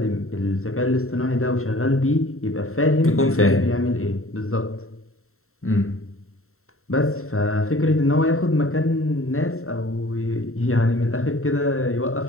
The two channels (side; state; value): right; late; 0.63 ms